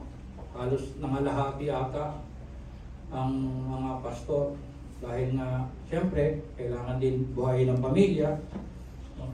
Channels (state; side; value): identical; both; correlation 1.00